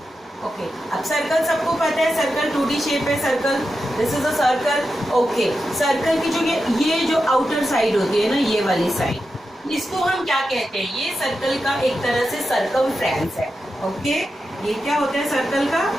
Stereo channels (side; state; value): both; normal; correlation 0.89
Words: ओके, अब सर्कल सबको पता है, सर्कल 2D शेप है circle, this is a circle. Okay, circle की जो ये जो आउटर साइड होती है ना, ये वाली साइड, इसको हम क्या कहते हैं, ये सर्कल का एक तरह से सर्कमफ्रेंस है। ओके, ये क्या होता है, सर्कल